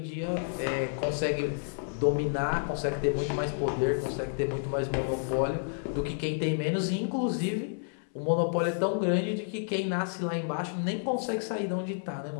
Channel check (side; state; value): right; silent; 58 dB below the other